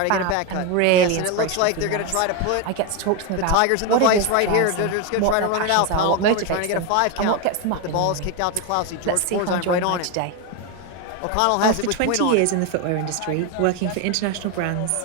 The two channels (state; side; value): different; both; correlation 0.02